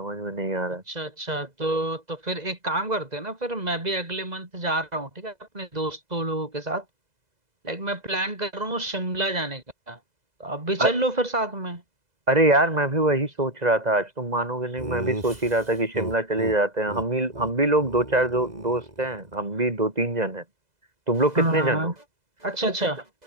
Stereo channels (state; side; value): late; left; 2.0 ms